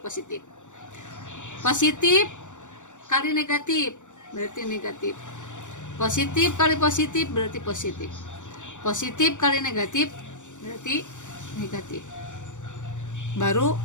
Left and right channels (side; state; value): right; late; 0.85 ms